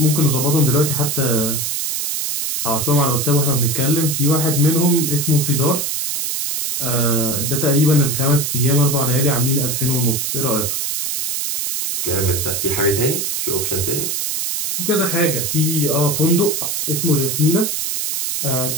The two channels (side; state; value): right; noise; hiss, 1 dB below the sound